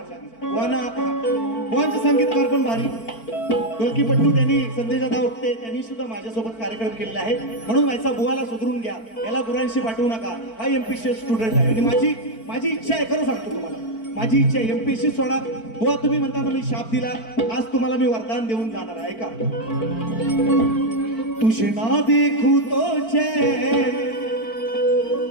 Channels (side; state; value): right; late; 4.5 ms